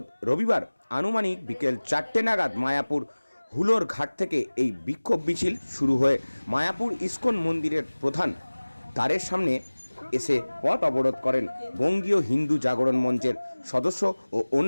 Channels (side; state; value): both; inverted; correlation -1.00